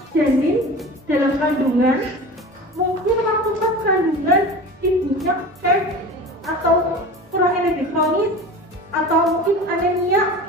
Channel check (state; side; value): normal; both; correlation 0.34